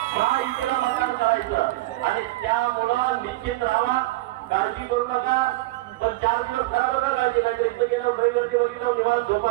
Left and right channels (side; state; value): left; quieter; 19.2 dB